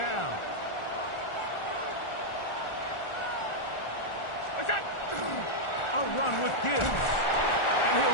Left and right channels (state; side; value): late; right; 1.4 ms